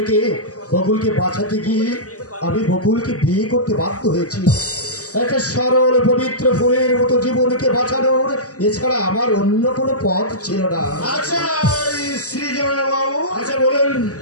বকুলকে বাঁচাতে গিয়ে আমি বকুলকে বিয়ে করতে বাধ্য হয়েছি। একটা সরল পবিত্র ফুলের মতো জীবনকে বাঁচানোর এছাড়া আমার অন্য কোনো পথ ছিল না। আচ্ছা শ্রীজন বাবু, আচ্ছা বলুন,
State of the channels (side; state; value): right; late; 0.66 ms